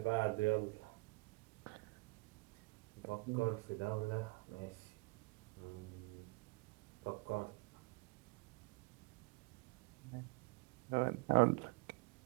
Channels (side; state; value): left; quieter; 26.6 dB